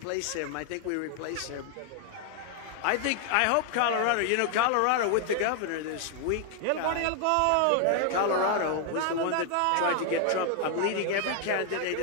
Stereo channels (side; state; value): both; different; correlation 0.00